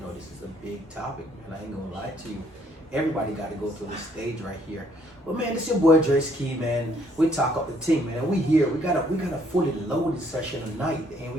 this is a big topic, man. I ain't gonna lie to you. Everybody got to go through this stage right here. But man, it's your boy Dre Ski, man. We talk up the team, man. We here. We got a fully loaded session tonight, and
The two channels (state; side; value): normal; both; correlation 0.66